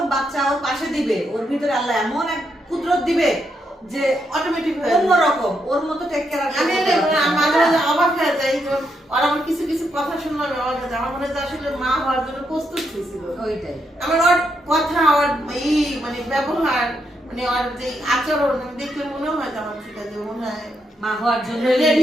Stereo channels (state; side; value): normal; both; correlation 0.80